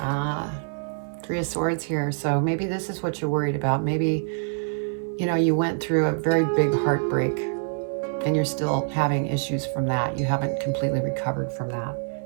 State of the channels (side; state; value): left; silent; digital silence